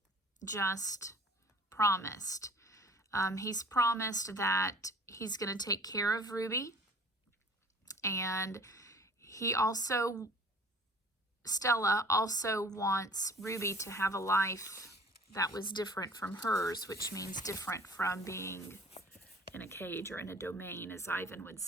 just promised. He's promised that he's going to take care of Ruby. And Stella also wants Ruby to have a life that was different from hers, which means different from being in a cage or in a domain, as Ivan would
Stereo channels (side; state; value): both; normal; correlation 0.49